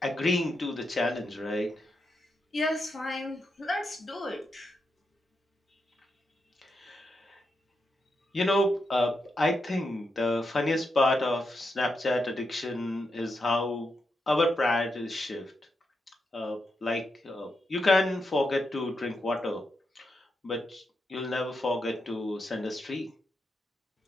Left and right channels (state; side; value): normal; both; correlation 0.85